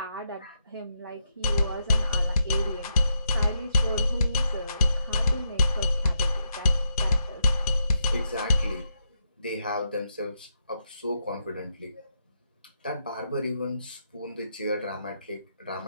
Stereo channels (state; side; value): inverted; both; correlation -0.82